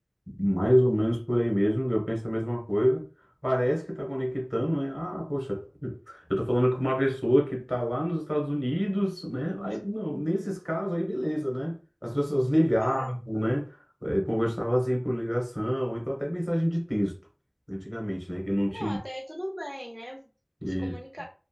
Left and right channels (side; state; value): both; identical; correlation 1.00